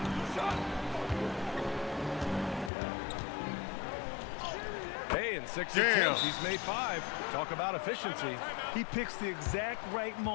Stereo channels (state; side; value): drops out; right; at 2.7 s